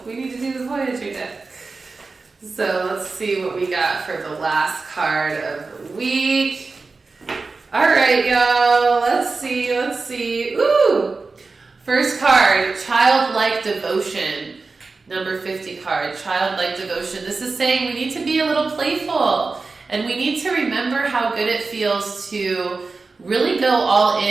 we need to do the Voyager deck. So let's see what we got for the last card of the week. All right, y'all, let's see. Ooh! First card, Childlike Devotion. Number 50 card, Childlike Devotion. This is saying we need to be a little playful, and we need to remember how good it feels to really go all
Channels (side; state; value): left; quieter; 4.0 dB